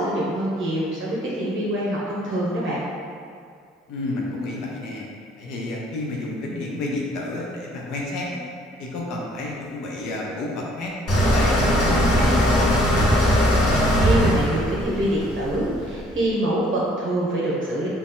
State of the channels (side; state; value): both; normal; correlation 0.62